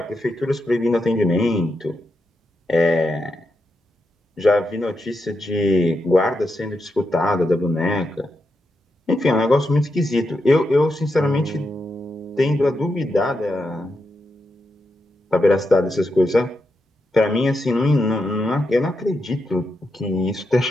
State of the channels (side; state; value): both; normal; correlation 0.85